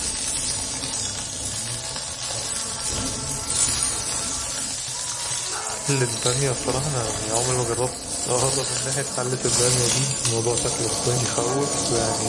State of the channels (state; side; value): identical; both; correlation 1.00